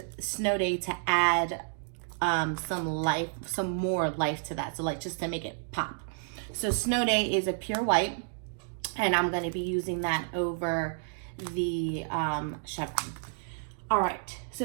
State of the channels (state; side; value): silent; left; digital silence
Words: Snow Day to add some more life to that. So like just to make it pop. So Snow Day is a pure white. And I'm going to be using that over the Chevron. All right,